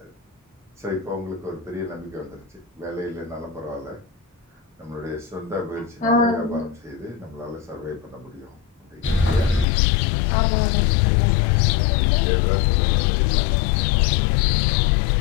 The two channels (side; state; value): right; drops out; at 9.7 s